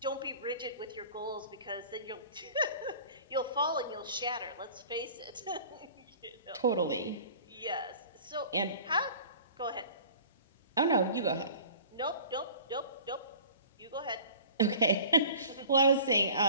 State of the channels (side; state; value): both; inverted; correlation -0.44